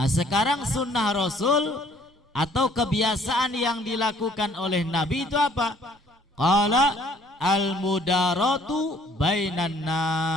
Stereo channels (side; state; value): both; normal; correlation 0.59